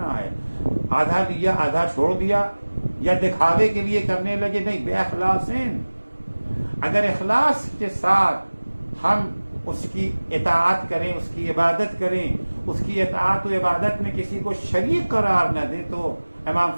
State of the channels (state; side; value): inverted; both; correlation -1.00